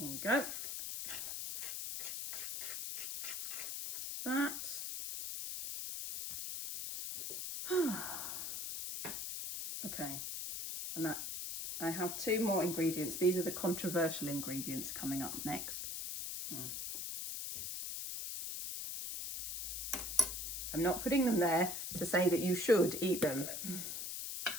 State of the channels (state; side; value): noise; left; hiss, 4 dB below the sound